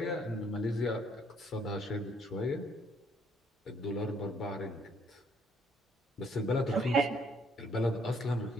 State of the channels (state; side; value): normal; both; correlation 0.66